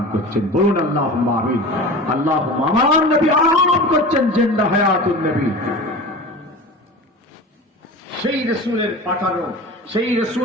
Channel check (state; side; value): normal; both; correlation 0.34